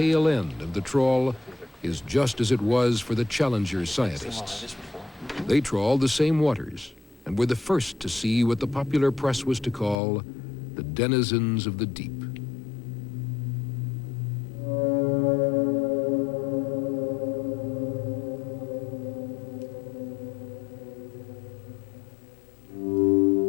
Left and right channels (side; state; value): right; drops out; at 10.0 s